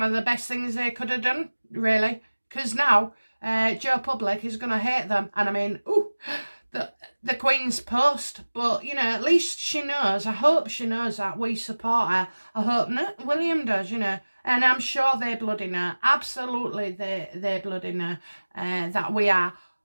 of the best things they could have done, really. Because now, Joe Public is going to hate them. And I mean, ooh, the Queen's post. But, you know, at least she knows. I hope she knows that we support her. I hope William does, you know. And I'm sure they bloody know. Absolutely, they bloody know that we are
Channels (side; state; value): both; inverted; correlation -1.00